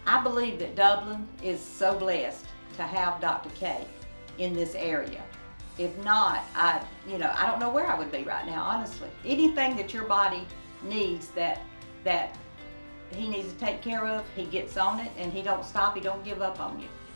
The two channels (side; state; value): both; inverted; correlation -1.00